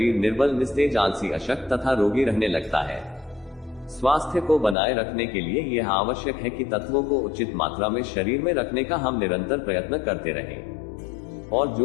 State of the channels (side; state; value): right; drops out; at 4.8 s